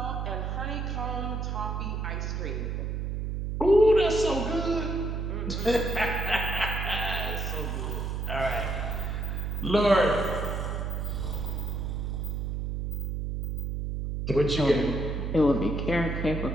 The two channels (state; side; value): noise; right; hum, 2 dB below the sound